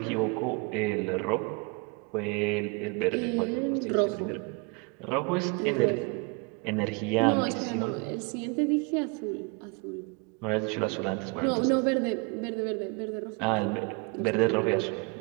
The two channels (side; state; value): left; quieter; 31.1 dB